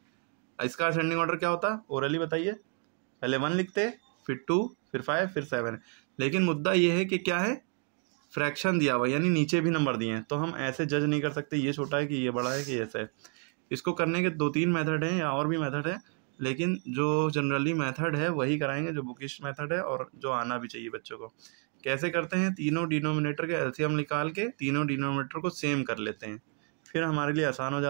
इसका असेंडिंग ऑर्डर क्या होता? ओरली बताइए। पहले 1 लिखते, फिर 2, फिर 5, फिर 7। लेकिन मुद्दा ये है कि क्या है, फ्रैक्शन दिया हुआ यानी नीचे भी नंबर दिए हैं, तो हम ऐसे जज नहीं कर सकते ये छोटा है कि ये बड़ा है कि ऐसा है। इसको करने के 2-3 मेथड हैं या और भी मेथड है, लेकिन जो जनरली मेथड है वही कराएंगे जो बुकिश मेथड है और जो आना भी चाहिए बच्चों को। कैसे करते हैं, तीनों डिनोमिनेटर के एलसीएम निकाल के तीनों डिनोमिनेटर को सेम कर लेते हैं, फिर हमारे लिए आसान हो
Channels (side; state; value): left; quieter; 36.8 dB